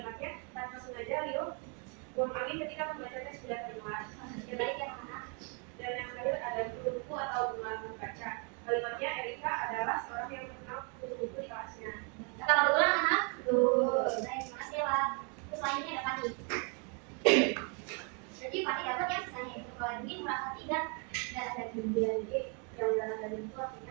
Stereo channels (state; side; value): quieter; left; 36.8 dB